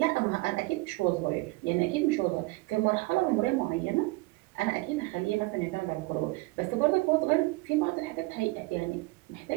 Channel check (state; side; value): quieter; left; 23.2 dB